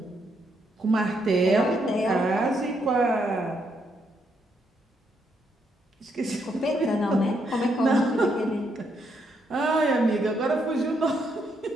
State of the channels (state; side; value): normal; both; correlation 0.76